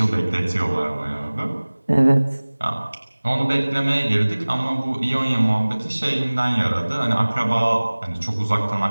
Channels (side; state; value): both; inverted; correlation -1.00